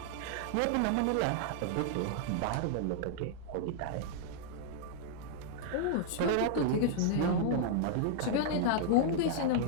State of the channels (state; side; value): different; both; correlation -0.01